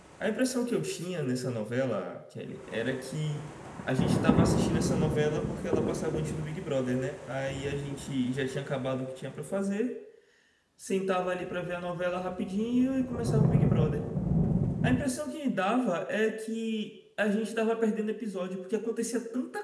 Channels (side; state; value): both; identical; correlation 1.00